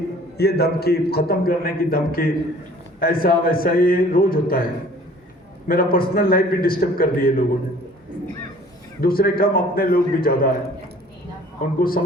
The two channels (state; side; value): normal; both; correlation 0.51